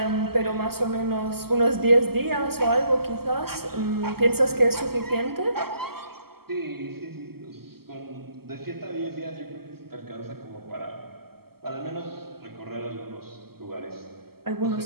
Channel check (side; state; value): left; late; 0.95 ms